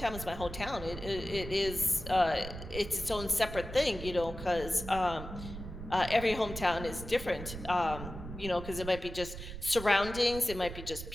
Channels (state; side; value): noise; right; rumble, 10 dB below the sound